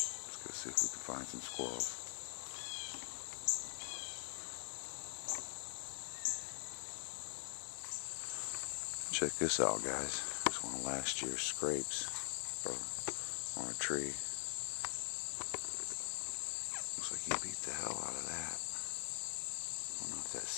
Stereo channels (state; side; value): silent; right; digital silence